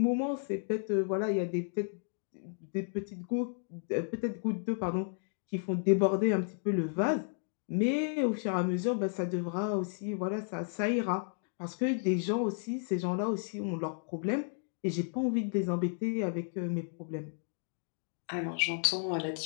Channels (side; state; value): right; silent; digital silence